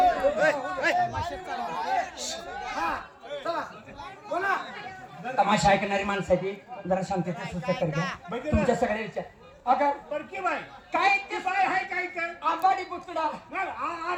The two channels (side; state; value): both; identical; correlation 1.00